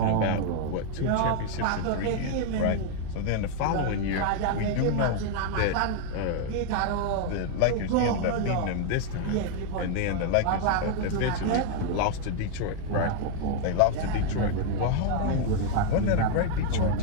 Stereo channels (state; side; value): different; both; correlation 0.00